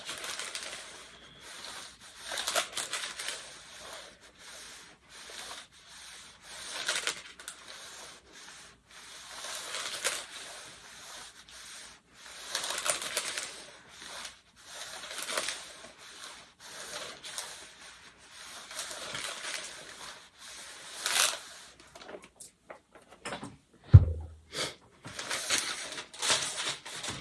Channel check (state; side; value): identical; both; correlation 1.00